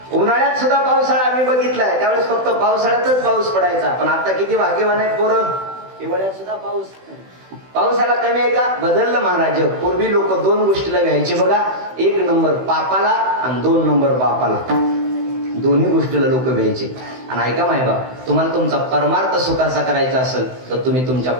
उन्हाळ्यात सुद्धा पावसाळा आम्ही बघितलाय. त्यावेळेस फक्त पावसाळ्यातच पाऊस पडायचा. पण आता किती भाग्यवान आहेत पोरं, हिवाळ्यात सुद्धा पावसाला कमी आहे का? बदललं महाराज. पूर्वी लोक 2 गोष्टीला घ्यायचे बघा, 1 नंबर पापाला आणि 2 नंबर बापाला. दोन्ही गोष्टीला लोक घ्यायचे. आणि ऐका मायबाप, तुम्हाला तुमचा परमार्थ सुखाचा करायचा असेल तर तुम्ही तुमच्या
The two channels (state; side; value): late; left; 16 ms